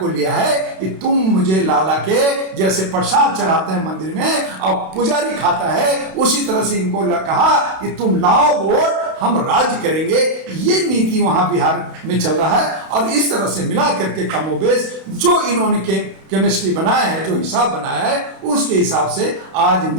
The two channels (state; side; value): late; left; 32 ms